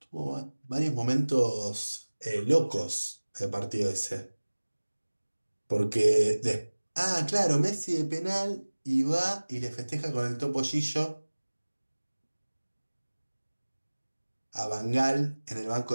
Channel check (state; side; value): inverted; both; correlation -1.00